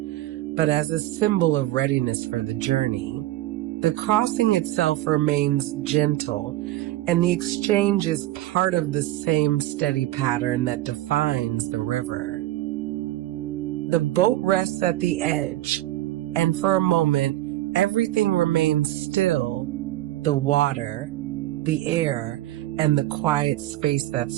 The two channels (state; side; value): quieter; left; 15.5 dB